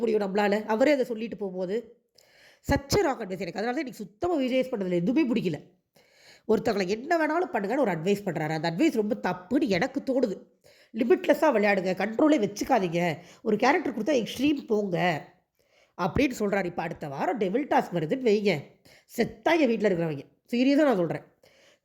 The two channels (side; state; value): both; identical; correlation 1.00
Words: முடியும் நம்மளால்? அவரே அதை சொல்லிட்டு போகும்போது சச்ச ராங் அட்வைஸ். எனக்கு அதனால தான் எனக்கு சுத்தமாக விஜேஎஸ் பண்ணுறதுல எதுவுமே பிடிக்கல. ஒருத்தவங்களை என்ன வேணாலும் பண்ணுங்கன்னு ஒரு அட்வைஸ் பண்ணுறாரு. அந்த அட்வைஸ் ரொம்ப தப்புன்னு எனக்கு தோணுது. லிமிட்லெஸ்ஸாக விளையாடுங்க, கண்ட்ரோலே வச்சுக்காதீங்க, ஒரு கேரக்டர் கொடுத்தா எக்ஸ்ட்ரீம் போங்க அப்படின்னு சொல்கிறாரு. இப்போ அடுத்த வாரம் டெவில் டாஸ்க் வருதுன்னு வைங்க, செத்தாங்க வீட்டில் இருக்கிறவங்க. சீரியஸாக நான் சொல்கிறேன்.